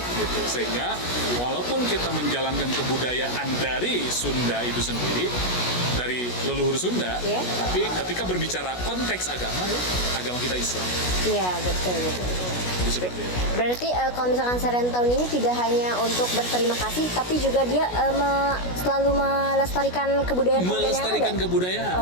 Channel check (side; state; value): right; late; 16 ms